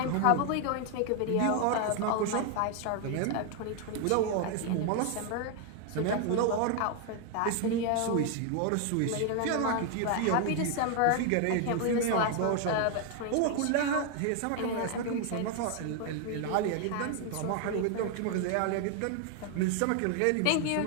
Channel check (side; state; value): both; different; correlation 0.00